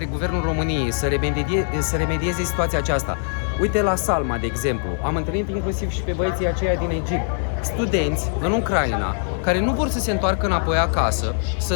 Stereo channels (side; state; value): right; silent; 56 dB below the other